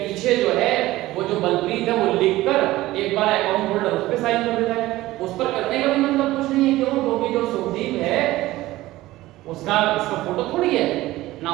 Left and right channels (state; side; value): quieter; left; 17.2 dB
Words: जो है वो जो बलप्रीत है वो लिखकर एक बार अकाउंट होल्डर उस पे साइन कर देता है। उस पर करने का भी मतलब कुछ नहीं है, क्यों? क्योंकि जो सुखदीप है उसका इसका फोटो थोड़ी है ना,